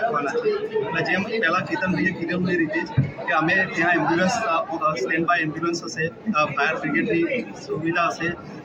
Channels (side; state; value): both; identical; correlation 1.00